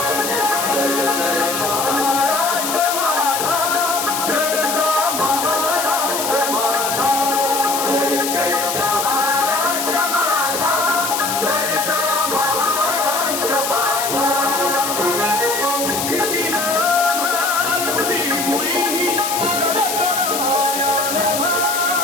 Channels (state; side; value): noise; left; hiss, 3 dB below the sound